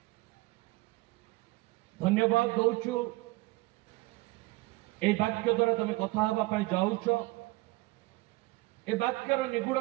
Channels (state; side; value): quieter; left; 21.4 dB